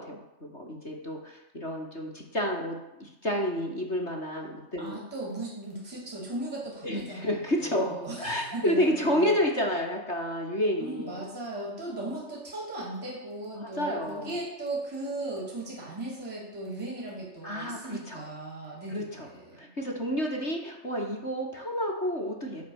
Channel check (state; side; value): late; right; 3.3 ms